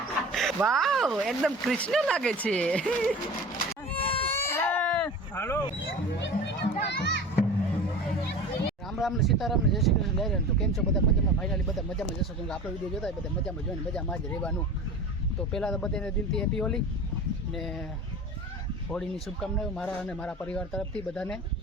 વાવ એકદમ કૃષ્ણ લાગે છે हेलो राम राम ने सीताराम ने जय श्री कृष्ण लहरे तो केम छो बधा मजामां फाइनली बधा मजामां जशो केम आपणो विडियो जोता बधा मजामां जोईने मजामां ज रहेवानुं तो पहला तो बधाने दिलथी हेपी होली ने होळीनी शुभकामनाओं मारा अने मारा परिवार तरफथी बधाने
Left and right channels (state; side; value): normal; both; correlation 0.35